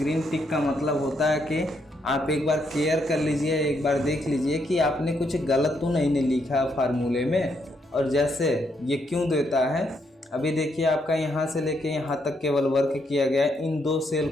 टिक का मतलब होता है कि आप एक बार केयर कर लीजिए, एक बार देख लीजिए कि आपने कुछ गलत तो नहीं लिखा फार्मूले में। और जैसे ये क्यों देता है, अभी देखिए आपका यहाँ से लेके यहाँ तक केवल वर्क किया गया है, इन 2 सेल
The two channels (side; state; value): both; normal; correlation 0.76